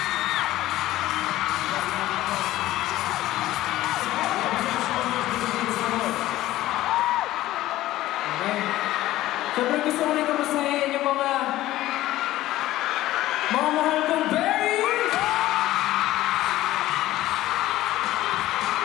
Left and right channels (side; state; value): right; quieter; 15.5 dB